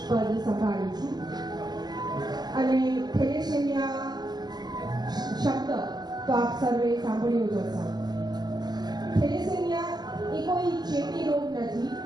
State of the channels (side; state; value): left; late; 0.20 ms